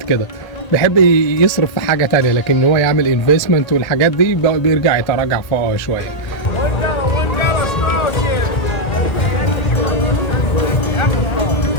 كده بيحب يصرف في حاجة تانية، لكن هو يعمل انفستمنت والحاجات دي بيرجع يتراجع فوقها شوية.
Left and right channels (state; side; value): late; right; 1.8 ms